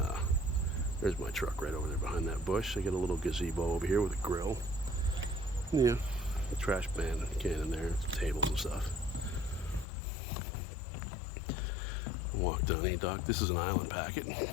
there's my truck right over there behind that bush. I got a little gazebo over here with a grill. Yeah, a trash can in there, tables and stuff. Walk down E-Dock. This is an island packet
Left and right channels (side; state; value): right; drops out; at 9.9 s